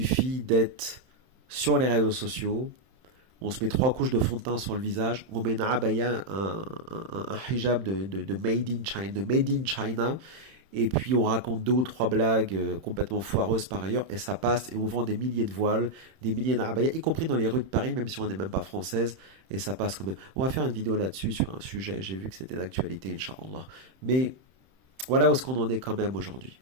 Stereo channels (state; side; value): late; left; 31 ms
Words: d'être sur les réseaux sociaux, on se met 3 couches de fond de teint sur le visage, on met une abaya, un hijab de made in China, et puis on raconte 2 ou 3 blagues complètement foireuses par ailleurs, et ça passe, et on vend des milliers de voiles, des milliers d'abaya, y compris dans les rues de Paris, même si on n'est même pas française, et ça passe quand même. On va faire une vidéo là-dessus, sur un sujet, j'ai vu que c'était d'actualité, Inch'Allah. Mais voilà où est-ce qu'on en est quand même aujourd'hui.